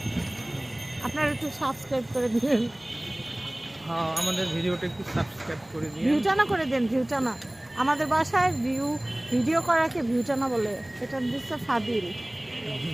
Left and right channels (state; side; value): noise; right; rumble, 30 dB below the sound